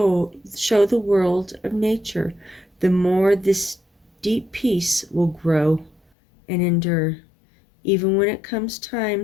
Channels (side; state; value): right; drops out; at 6.0 s